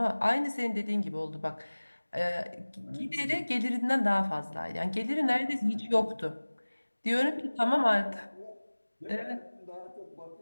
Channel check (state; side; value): inverted; both; correlation -1.00